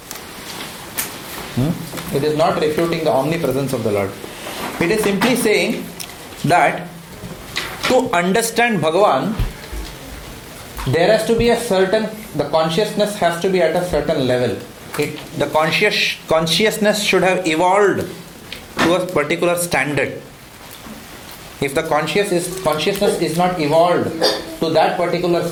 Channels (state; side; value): identical; both; correlation 1.00